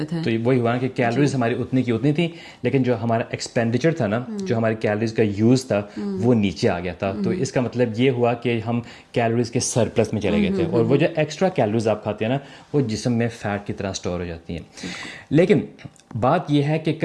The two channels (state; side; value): identical; both; correlation 1.00